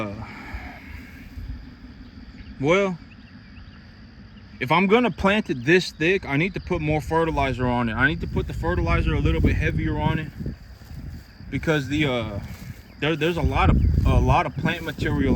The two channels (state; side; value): identical; both; correlation 1.00